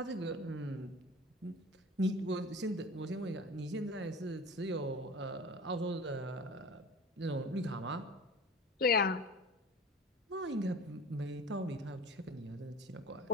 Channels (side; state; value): both; normal; correlation 0.38